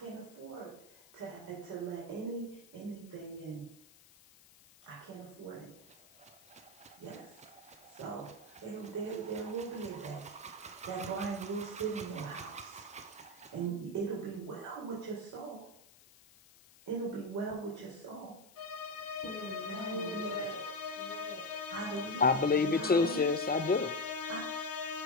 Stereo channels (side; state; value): left; noise; hiss, 24 dB below the sound